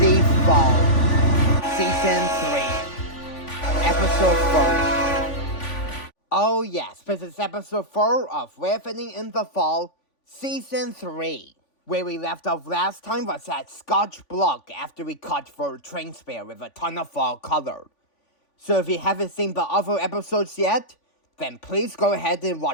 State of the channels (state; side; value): late; right; 3.5 ms